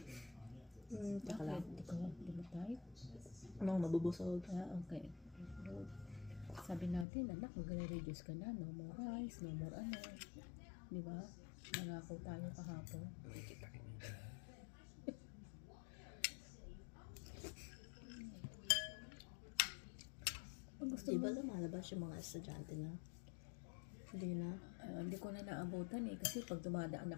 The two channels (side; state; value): right; drops out; at 7.1 s